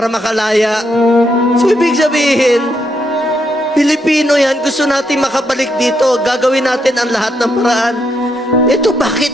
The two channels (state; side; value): normal; both; correlation 0.78